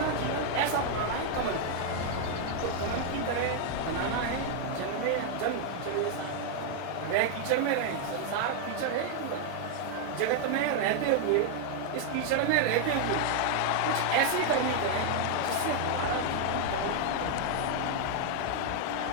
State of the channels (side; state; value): both; different; correlation 0.00